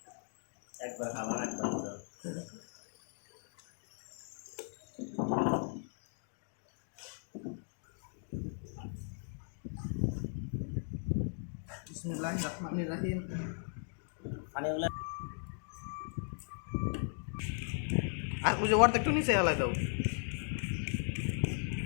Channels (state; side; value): silent; right; 53 dB below the other